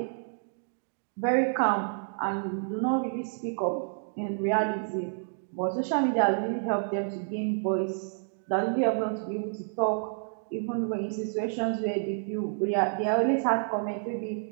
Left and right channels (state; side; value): silent; left; digital silence